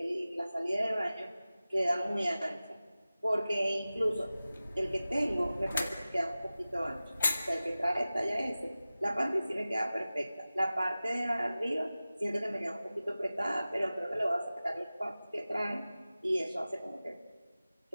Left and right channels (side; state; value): both; inverted; correlation -0.96